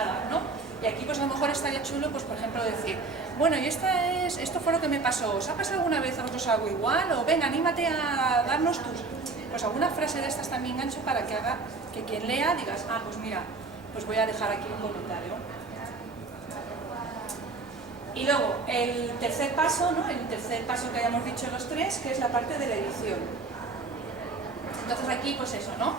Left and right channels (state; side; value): quieter; left; 3.9 dB